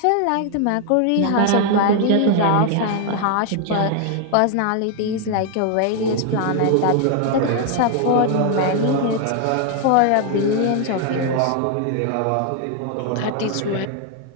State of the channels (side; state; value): both; different; correlation 0.00